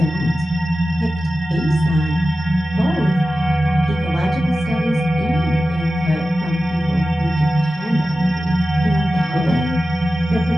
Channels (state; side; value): normal; both; correlation 0.94